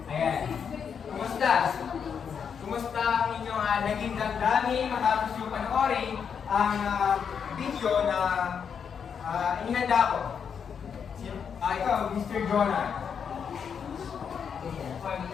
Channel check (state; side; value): quieter; right; 7.0 dB